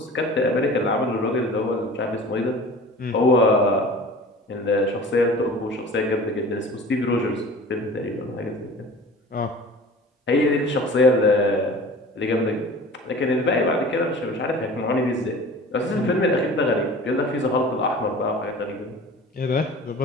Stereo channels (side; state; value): both; normal; correlation 0.41